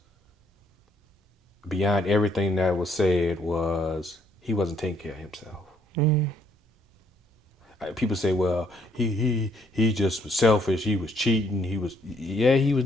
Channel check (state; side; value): normal; both; correlation 0.68